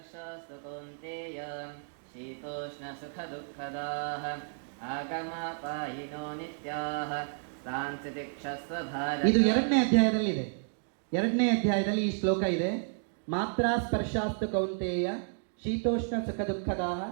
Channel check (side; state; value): left; silent; digital silence